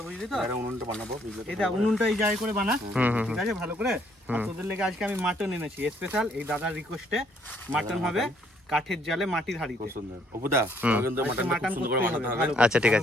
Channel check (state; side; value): normal; both; correlation 0.67